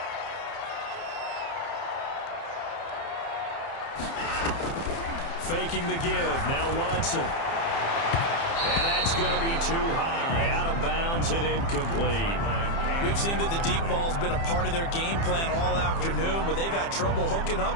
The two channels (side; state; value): right; late; 30 ms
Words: Faking the give. Now Watson. And that's going to be too high. Out of bounds and incomplete. We've seen that the deep ball's been a part of their game plan all afternoon, but they've had trouble hooking